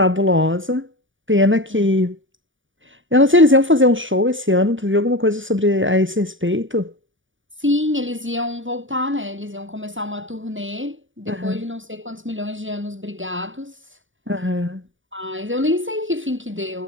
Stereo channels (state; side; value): late; left; 0.57 ms